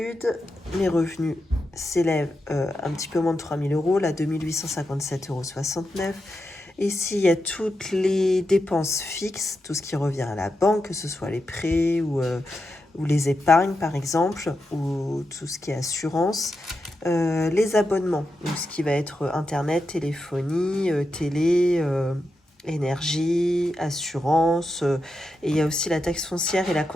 mes revenus s'élèvent un petit peu moins de 3 000 euros, là 2 857,69 €. Ici, il y a toutes les dépenses fixes, tout ce qui revient à la banque, que ce soit les prêts ou les épargnes par exemple, ou tout ce qui est assurance. Les abonnements, donc ce qui va être internet, téléphonie, télé, énergie, assurance, et il y a aussi la taxe foncière et la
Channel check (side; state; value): both; normal; correlation 0.88